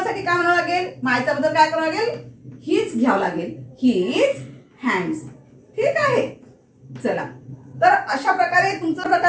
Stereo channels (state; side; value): identical; both; correlation 1.00